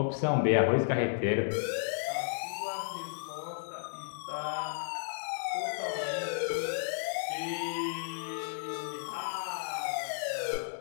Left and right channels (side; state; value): right; silent; digital silence